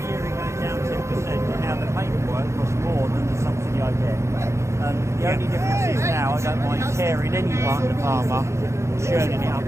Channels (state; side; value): late; left; 0.14 ms